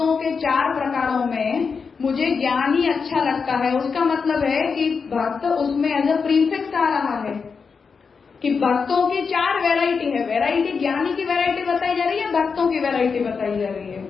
के 4 प्रकारों में मुझे ज्ञानी अच्छा लगता है। उसका मतलब है कि भक्त उसमें एज अ प्रीफिक्स आ रहा है कि भक्तों की 4 वैरायटी है। वैरायटी ज्ञानी की वैरायटी बताई जा रही है, भक्तों की वैरायटी बताई जा रही है।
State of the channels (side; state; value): right; quieter; 5.4 dB